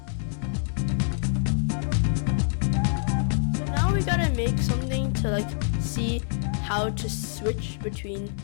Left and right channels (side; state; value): right; silent; 61 dB below the other